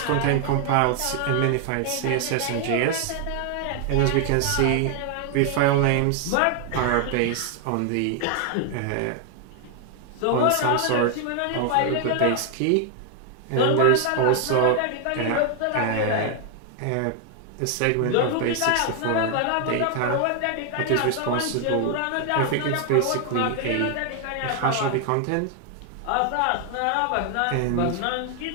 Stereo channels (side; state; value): both; different; correlation 0.00